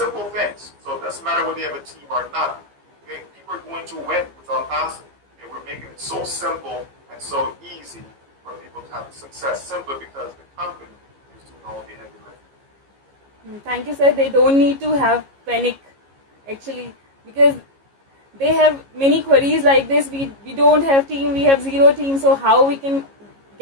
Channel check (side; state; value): left; late; 15 ms